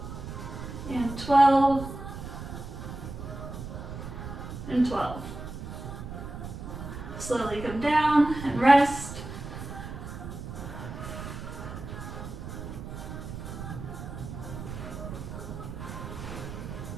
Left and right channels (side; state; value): right; noise; rumble, 9 dB below the sound